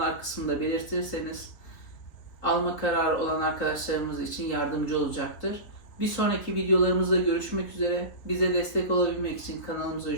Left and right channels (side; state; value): right; late; 3.8 ms